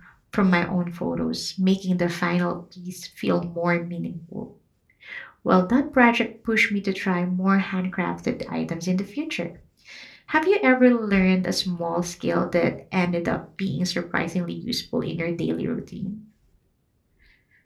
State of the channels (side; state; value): both; identical; correlation 1.00